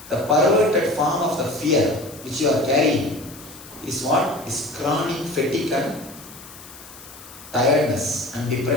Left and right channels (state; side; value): noise; left; hiss, 18 dB below the sound